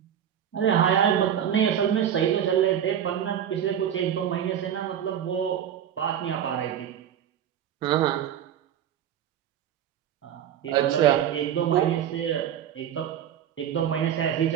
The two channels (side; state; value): left; quieter; 9.7 dB